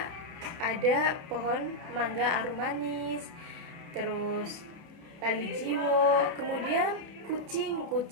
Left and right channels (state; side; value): late; left; 30 ms